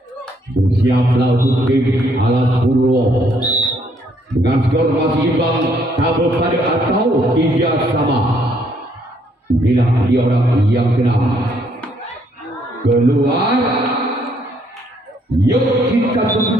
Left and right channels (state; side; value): normal; both; correlation 0.69